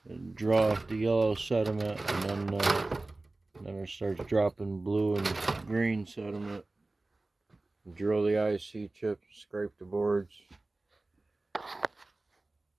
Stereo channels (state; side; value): quieter; left; 3.1 dB